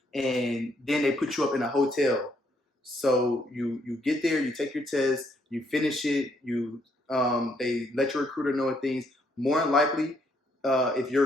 and then they put you up in a hotel. So you get there, you take your test, you finish it, they let your recruiter know things. More than likely, if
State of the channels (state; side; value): normal; both; correlation 0.72